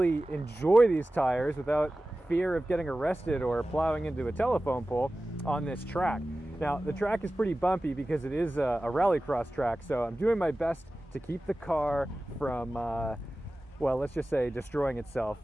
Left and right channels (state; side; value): normal; both; correlation 0.96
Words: enjoy these tires without fear of getting arrested or plowing into a telephone pole on this track. Now, the track is pretty bumpy because it is a rallycross track, so I'm doing my best to keep the car from, well, let's just say destroying itself